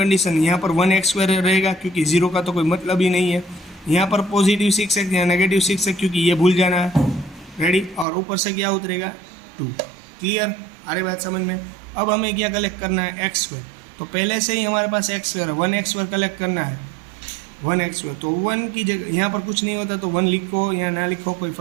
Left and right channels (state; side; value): drops out; left; at 8.1 s